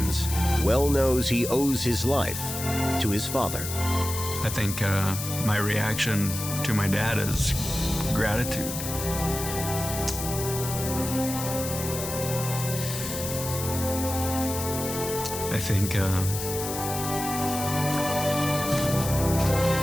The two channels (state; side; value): noise; left; hiss, 6 dB below the sound